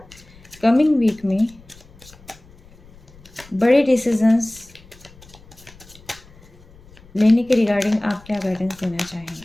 कमिंग वीक में बड़े डिसीजंस लेने के रिगार्डिंग आप क्या गाइडेंस देना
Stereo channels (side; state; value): left; noise; rumble, 24 dB below the sound